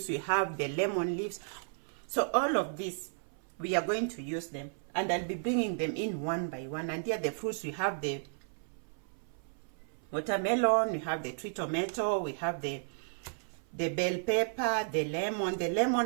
we have the lemon leaves. So all of this, we are going to use them, and I'll be bringing them in one by one. And here the fruits, we have the watermelon, we have the tree tomato, we have the bell pepper, the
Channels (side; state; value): left; silent; 55 dB below the other